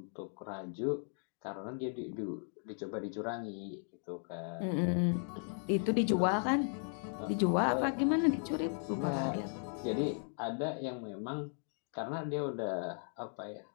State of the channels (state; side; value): silent; right; 53 dB below the other